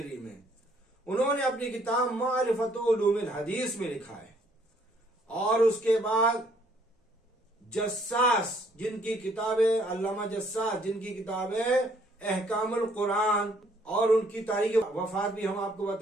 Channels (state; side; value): normal; both; correlation 0.64